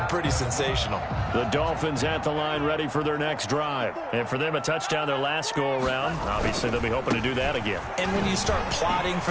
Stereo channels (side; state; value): both; identical; correlation 1.00